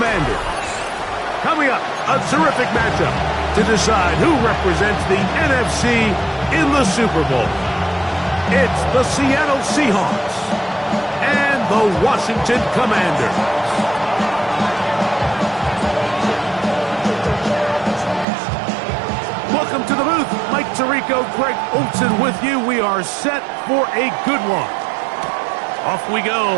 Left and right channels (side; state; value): left; drops out; at 18.2 s